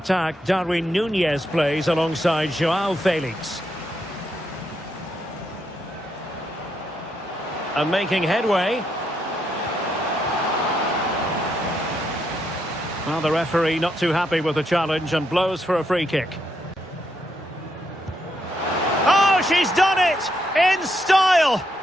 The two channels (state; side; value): normal; both; correlation 0.79